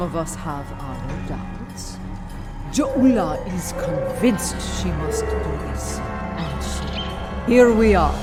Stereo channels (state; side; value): identical; both; correlation 1.00